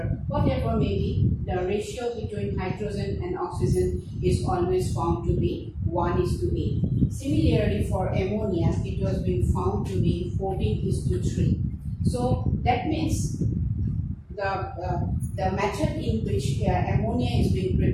whatever may be, the ratio between hydrogen and oxygen is always found to be 1:8. Similarly for ammonia, it was being found to be 14:3. So that means the method in which ammonia is being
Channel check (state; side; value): identical; both; correlation 1.00